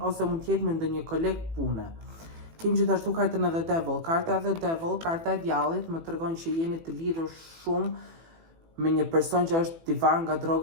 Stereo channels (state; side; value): late; left; 18 ms